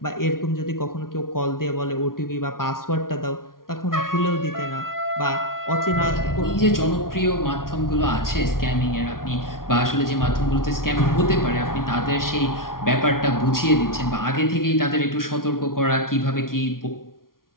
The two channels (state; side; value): late; right; 0.92 ms